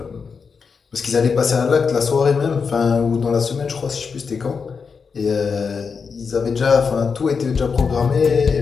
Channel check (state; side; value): quieter; right; 5.5 dB